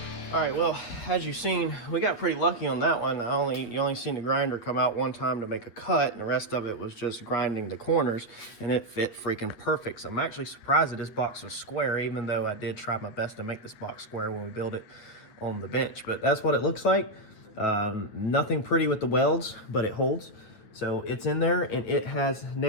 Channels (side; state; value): right; late; 9.1 ms